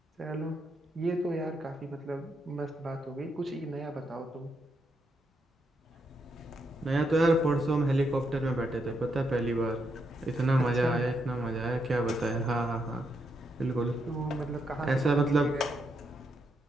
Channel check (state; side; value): normal; both; correlation 0.80